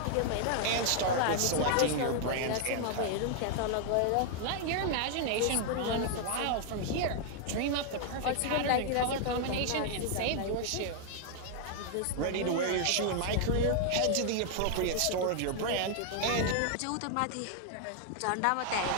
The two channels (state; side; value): different; both; correlation 0.00